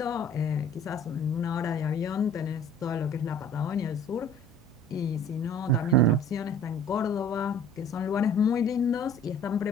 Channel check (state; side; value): normal; both; correlation 0.49